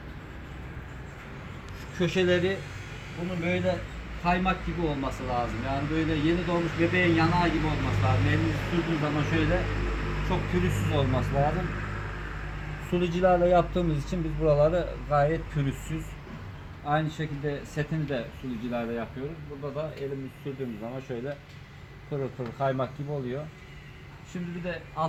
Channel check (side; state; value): both; identical; correlation 1.00